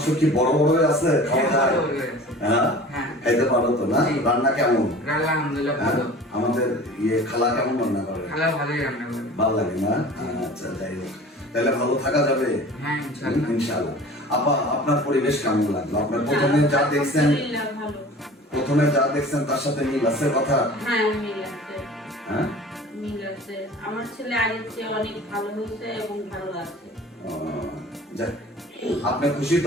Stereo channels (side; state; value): both; normal; correlation 0.42